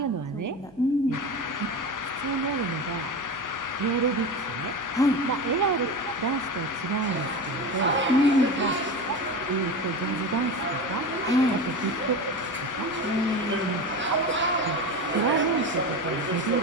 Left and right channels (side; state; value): right; noise; hum, 27 dB below the sound